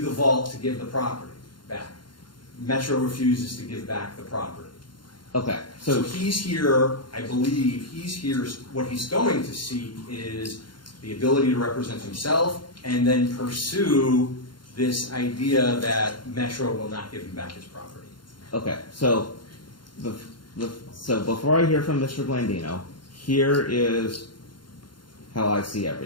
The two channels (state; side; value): late; right; 0.72 ms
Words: vault to give the property back. Metro refuses to give back the property. okay, So he's here, I believe, what he's going to seek is the ability to represent himself and then pursue this idea that Metro will not give him back his property. okay. So so before I hear from Mr. Blandino, here is how I see